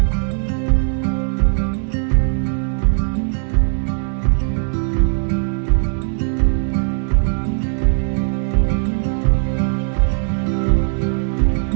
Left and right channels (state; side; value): silent; left; 62 dB below the other